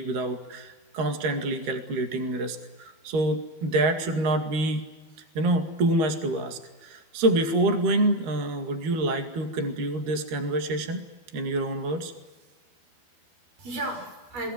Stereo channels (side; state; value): left; late; 13 ms